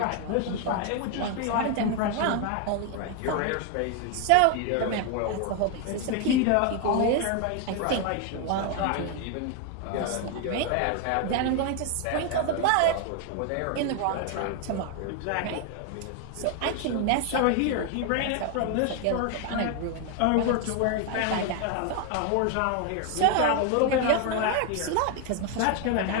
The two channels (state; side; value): different; both; correlation 0.01